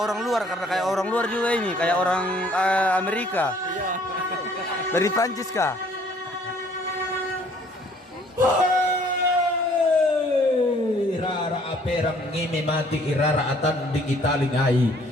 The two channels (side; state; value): both; normal; correlation 0.59